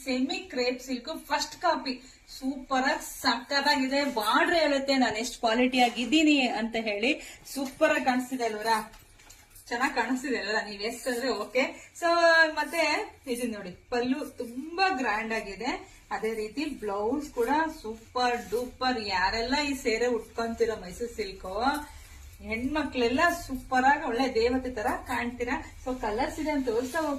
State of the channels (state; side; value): identical; both; correlation 1.00